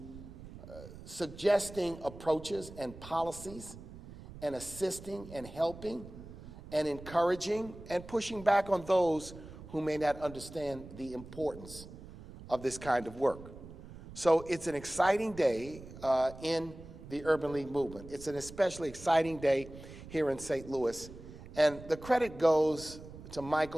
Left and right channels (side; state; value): right; noise; rumble, 15 dB below the sound